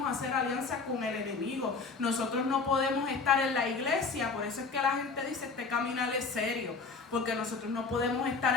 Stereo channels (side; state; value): right; quieter; 4.5 dB